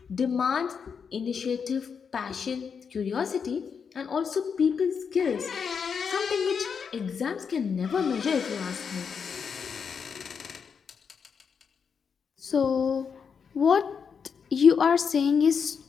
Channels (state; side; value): quieter; right; 6.3 dB